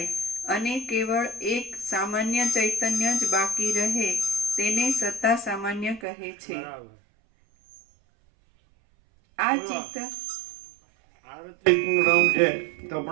અને કેવળ એક સામાન્ય ચૈતન્ય જ બાકી રહે તેને સત્તા સામાન્ય કહે છે. આ ચિત્ત આરતીનું રાઉન્ડ છે તો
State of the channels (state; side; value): drops out; left; at 6.1 s